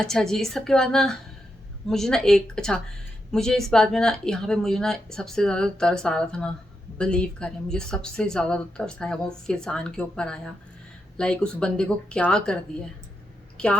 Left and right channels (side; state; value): both; normal; correlation 0.85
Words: जी, इस सब के बाद ना मुझे ना मुझे इस बात में ना यहाँ पे मुझे ना सबसे ज़्यादा तरस आ रहा था ना बिलीव करें, मुझे सबसे ज़्यादा तो तरस आया वो फैज़ान के ऊपर आया। लाइक उस बंदे को क्या कर दिया,